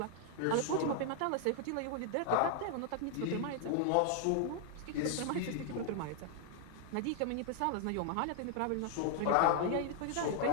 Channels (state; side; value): different; both; correlation 0.00